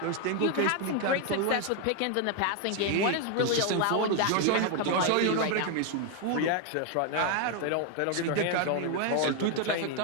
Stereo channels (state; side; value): different; both; correlation 0.01